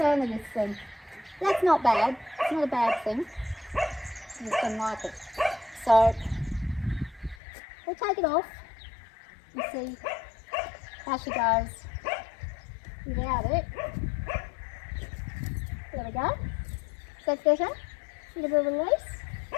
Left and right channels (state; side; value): drops out; right; at 7.4 s